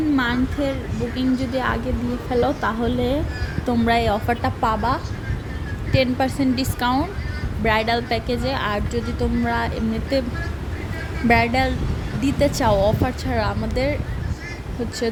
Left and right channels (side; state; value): both; identical; correlation 1.00